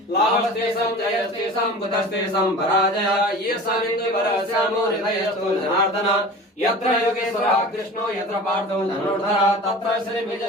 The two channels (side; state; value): both; normal; correlation 0.38